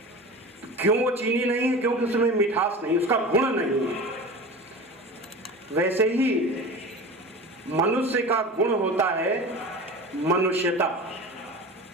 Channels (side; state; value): both; normal; correlation 0.33